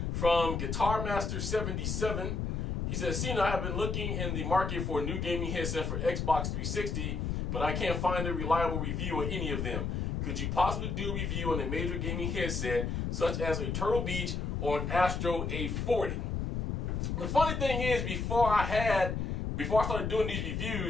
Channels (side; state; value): left; noise; rumble, 1 dB below the sound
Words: from Guitar Master 77. He says, "Cena, I have been looking in the market for a new gaming headset for Xbox 360, but I can't find a reliable review on any of them. Could you possibly do a review on a major gaming headset such as a Turtle Beach or an Astro A40? The funny thing is, before I started doing these